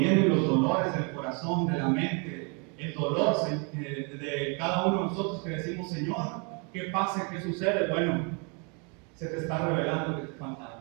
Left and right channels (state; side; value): quieter; left; 34.8 dB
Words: los dolores del corazón, de la mente, el dolor de cada uno de nosotros que decimos, Señor, ¿qué pasa? ¿Qué sucede? Bueno, se te está revelando que te falta